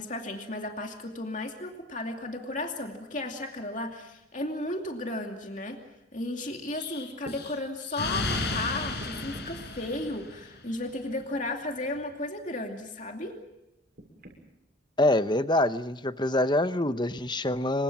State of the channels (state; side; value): normal; both; correlation 0.42